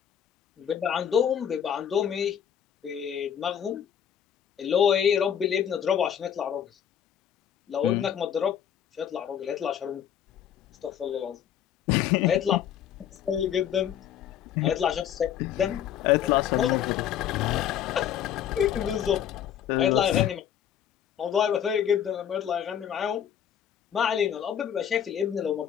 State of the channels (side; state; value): right; quieter; 9.4 dB